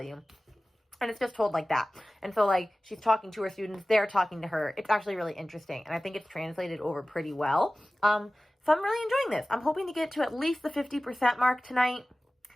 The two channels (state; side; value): normal; both; correlation 0.97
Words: And it's just told like that. And so she's talking to her students, they're talking to her. It's actually really interesting. And I think it's translated over pretty well. So I'm really enjoying this. I'm hoping to get to at least the 50% mark tonight.